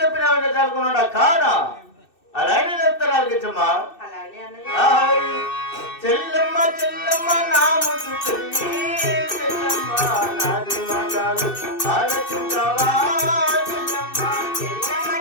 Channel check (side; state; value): right; late; 2.6 ms